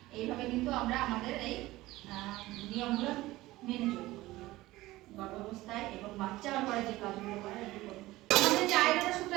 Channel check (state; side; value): quieter; left; 18.1 dB